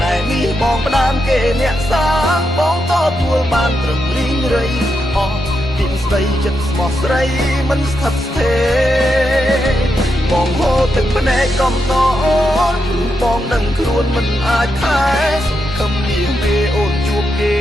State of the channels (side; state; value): both; normal; correlation 0.84